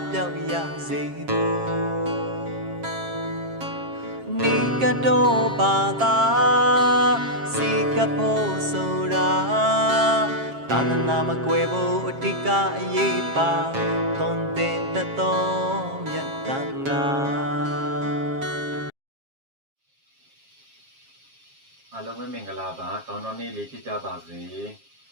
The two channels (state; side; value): late; left; 7.4 ms